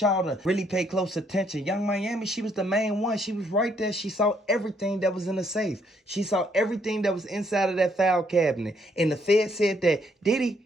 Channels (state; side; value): normal; both; correlation 0.70